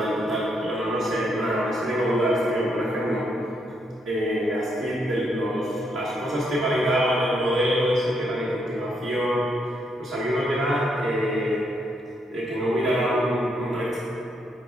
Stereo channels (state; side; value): normal; both; correlation 0.76